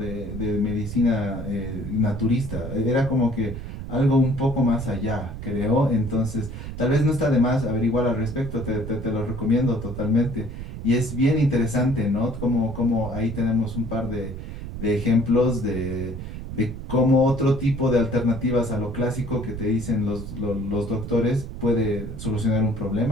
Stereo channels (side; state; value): right; noise; rumble, 8 dB below the sound